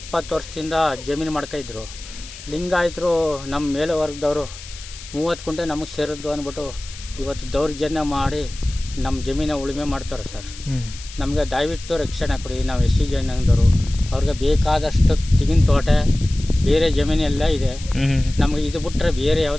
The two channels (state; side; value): noise; left; hiss, 15 dB below the sound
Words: ವರ್ಷದಿಂದ ಜಮೀನು ಮಾಡ್ತಾಯಿದ್ರು. ಲಿಂಗಾಯತರು ನಮ್ಮ ಮೇಲೆ ವರ್ಗದವರು 30 ಕುಂಟೆ ನಮಗೆ ಸೇರಿದ್ದು ಅಂದ್ಬಿಟ್ಟು ಇವತ್ತು ದೌರ್ಜನ್ಯ ಮಾಡಿ ನಮ್ಮ ಜಮೀನ ಉಳುಮೆ ಮಾಡ್ತಾರೆ ಸರ್. ನಮಗೆ ದಯವಿಟ್ಟು ರಕ್ಷಣೆ ಕೊಡಿ. ನಾವು SC ಜನಾಂಗದವರು, ಅವ್ರಿಗೆ ಬೇಕಾದಷ್ಟು ತೆಂಗಿನ ತೋಟ, ಬೇರೆ ಜಮೀನೆಲ್ಲ ಇದೆ. ನಮಗೆ ಇದು ಬಿಟ್ಟರೆ ಬೇರೆ